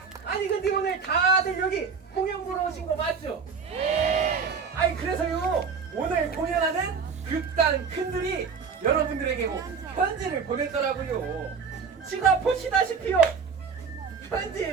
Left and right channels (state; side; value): quieter; left; 5.7 dB